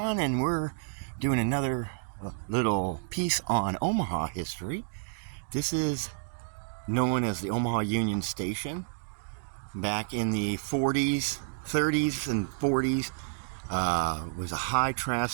and we're doing another little piece on Omaha history. This is known as the Omaha Union Station. Back in the 40s, 30s, and 40s, was a high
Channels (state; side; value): silent; left; digital silence